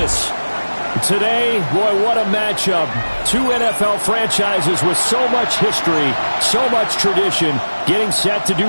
Today, boy, what a matchup. Two NFL franchises with so much history, so much tradition, getting set to do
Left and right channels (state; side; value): inverted; both; correlation -1.00